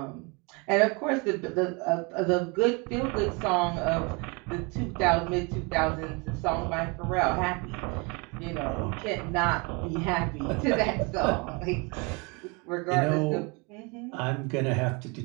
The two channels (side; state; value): left; quieter; 29.8 dB